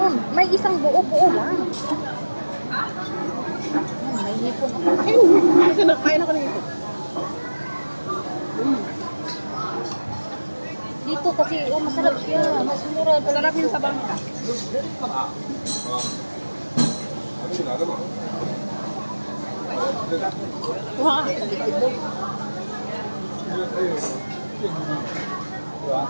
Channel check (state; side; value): inverted; both; correlation -1.00